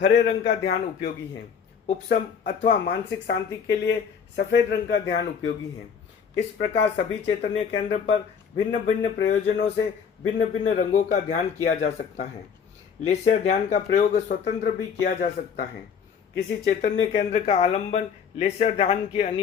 हरे रंग का ध्यान उपयोगी है। उपशम अथवा मानसिक शांति के लिए सफेद रंग का ध्यान उपयोगी है। इस प्रकार सभी चैतन्य केंद्र पर भिन्न भिन्न प्रयोजनों से भिन्न भिन्न रंगों का ध्यान किया जा सकता है। लेश्या ध्यान का प्रयोग स्वतंत्र भी किया जा सकता है। किसी चैतन्य केंद्र का आलंबन लेश्या ध्यान की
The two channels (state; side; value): quieter; right; 6.9 dB